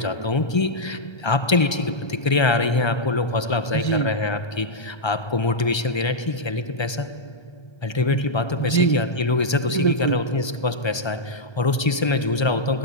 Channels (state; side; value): late; right; 1.3 ms